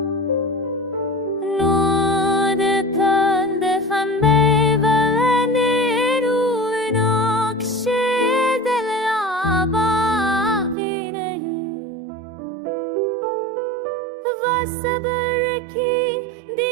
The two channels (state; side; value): drops out; left; at 10.8 s